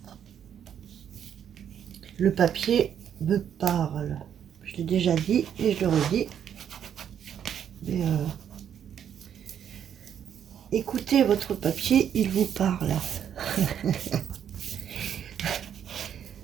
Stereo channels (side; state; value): left; quieter; 9.0 dB